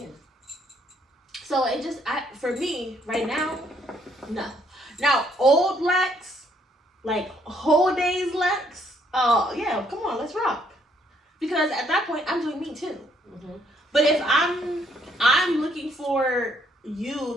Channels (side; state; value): both; normal; correlation 0.68